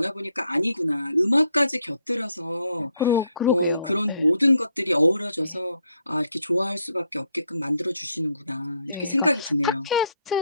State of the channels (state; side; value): inverted; both; correlation -0.73